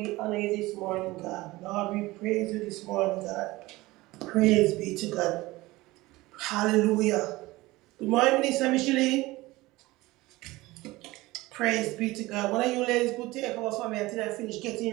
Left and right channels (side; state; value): left; quieter; 19.8 dB